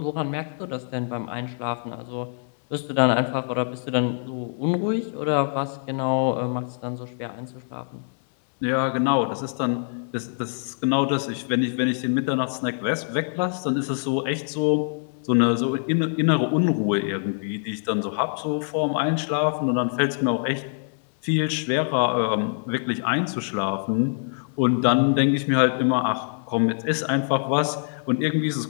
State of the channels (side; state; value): right; silent; digital silence